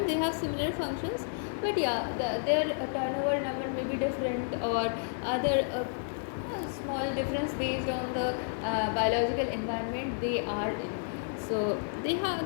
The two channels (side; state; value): right; silent; 57 dB below the other